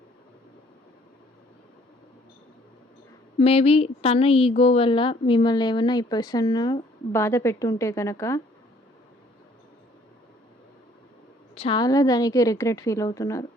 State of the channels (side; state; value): both; normal; correlation 0.60